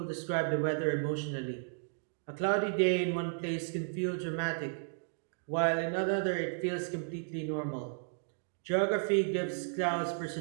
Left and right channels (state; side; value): silent; left; digital silence